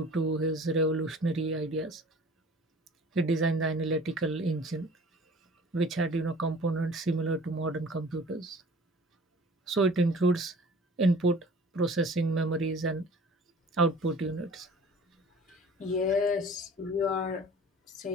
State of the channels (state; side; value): normal; both; correlation 0.46